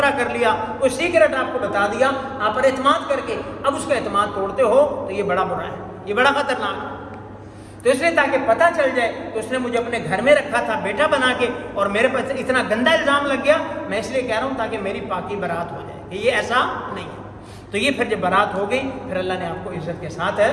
کر لیا، کوئی سیکرٹ آپ کو بتا دیا، آپ پر اعتماد کر کے اب اس کا اعتماد توڑتے ہو، تو یہ بڑا برا ہے، یہ بڑا خطرناک ہے۔ تو اس نے تاکہ پتہ چل جائے، تو اس نے مجھے اپنے گھر میں رکھا تھا بیٹا بنا کے، اور میرے پاس اتنا گندا الزام لگ گیا، میں اس لیے کہہ رہا ہوں تاکہ میری پاکی برات ہو جائے کہ یہ ایسا نہیں ہے۔ تو یہ پھر جب برات ہو گئی، پھر اللہ نے آپ کو عزت کے ساتھ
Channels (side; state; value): both; identical; correlation 1.00